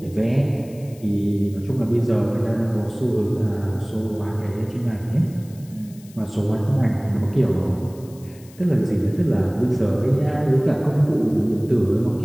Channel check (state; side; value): noise; left; hiss, 25 dB below the sound